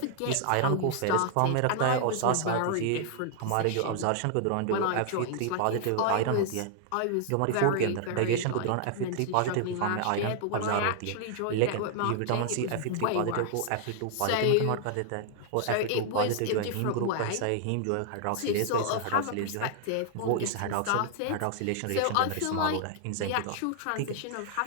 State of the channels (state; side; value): different; both; correlation 0.00